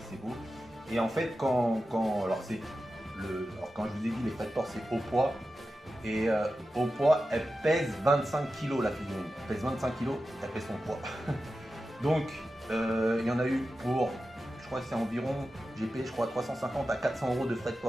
beau. Et en fait, alors quand je vous ai dit les frais de port, c'est au poids. Et au poids, elle pèse 25 kg la figurine. Elle pèse 25 kg, elle pèse son poids. Donc, il y en a eu pour, je crois que c'est environ, j'ai payé je crois 350 à 400 euros de frais de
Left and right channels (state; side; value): normal; both; correlation 0.92